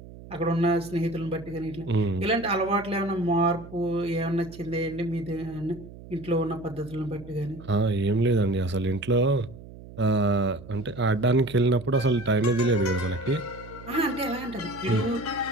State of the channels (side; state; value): right; noise; hum, 17 dB below the sound